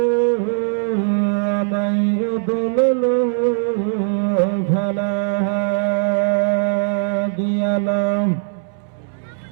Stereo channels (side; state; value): left; silent; 66 dB below the other